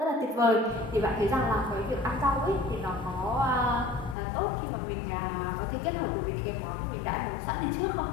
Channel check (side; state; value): right; drops out; at 4.2 s